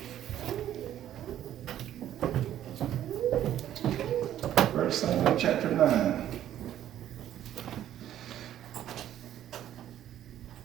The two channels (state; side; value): quieter; left; 11.6 dB